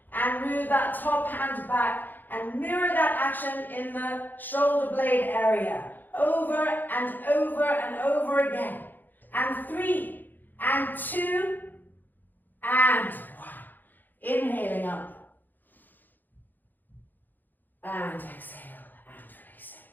and move that top hand back and mirror that action in the shoulder blade area, over and over and over again. And 3, and 2, and 1. Inhaling up. And exhale and releasing.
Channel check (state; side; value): late; right; 0.088 ms